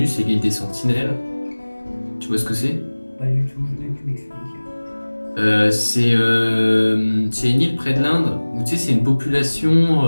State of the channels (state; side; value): inverted; both; correlation -1.00